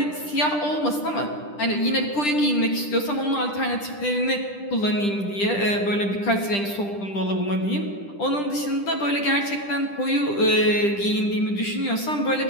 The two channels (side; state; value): right; late; 10 ms